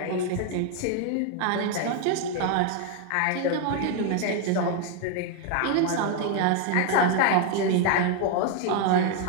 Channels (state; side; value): different; both; correlation 0.01